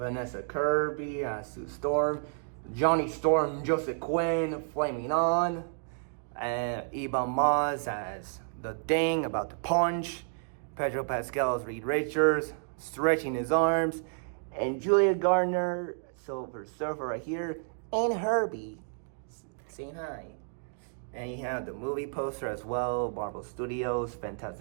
Kirby as Sue Storm, Johnny Storm, Joseph Quinn, Flaming On, and Ebon Moss as the Thing about to punch, Pedro Pascal as Reed Richards, stretching his arms, and Julia Gardner, Silver Surfer right here, and Herbie saying hi. And you have the movie poster as well, Marvel Studios,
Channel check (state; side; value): silent; left; digital silence